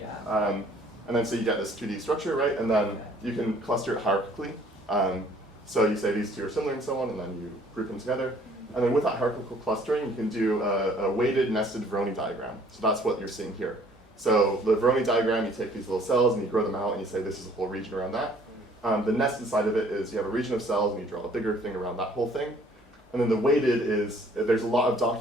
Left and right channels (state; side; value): normal; both; correlation 0.58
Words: And then so you get this 2D structure, right? And then you can cluster it hierarchically. So you say these two are similar and so on, and then you group them together. And then with that hierarchical clustering, you can do a weighted nested Voronoi diagram. So that's what you're seeing here. So the Voronoi diagram, you take these little cells and you grow them out and you say this is a whole region around that. The nested side of it is you have a region of cells and you draw a bigger thing around that whole thing. And then the weighted is, there's a lot of